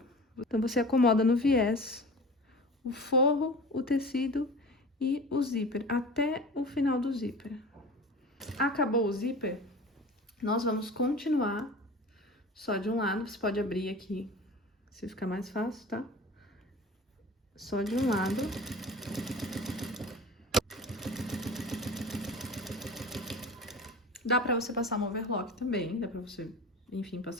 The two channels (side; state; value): both; normal; correlation 0.37